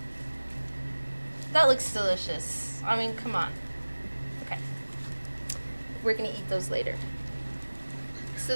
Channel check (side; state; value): both; inverted; correlation -1.00